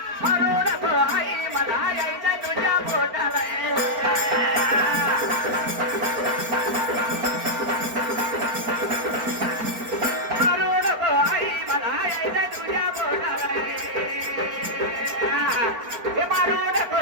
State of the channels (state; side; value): late; left; 4.4 ms